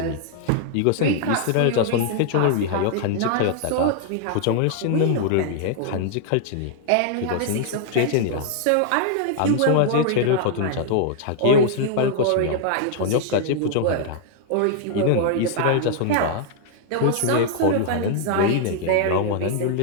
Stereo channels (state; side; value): different; both; correlation 0.00